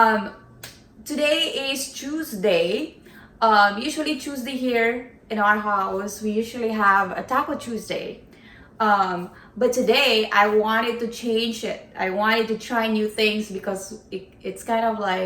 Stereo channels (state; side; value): identical; both; correlation 1.00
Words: Today is Tuesday. Usually Tuesday here in our house, we usually have a Taco Tuesday. But today I wanted to change it. I wanted to try new things because it's kind of